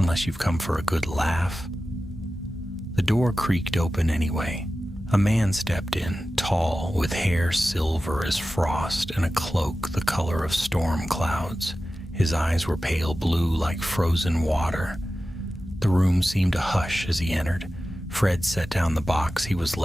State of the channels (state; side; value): normal; both; correlation 0.94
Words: you've come for a good laugh." The door creaked open anyway. A man stepped in, tall, with hair silver as frost and a cloak the color of storm clouds. His eyes were pale blue like frozen water. The room seemed to hush as he entered. Fred set down the box he was